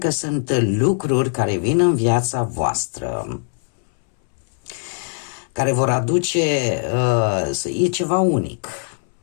sunt lucruri care vin în viața voastră, care vor aduce, e ceva unic,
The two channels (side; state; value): right; silent; 65 dB below the other